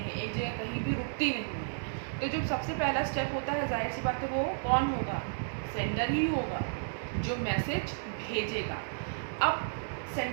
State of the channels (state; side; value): silent; left; digital silence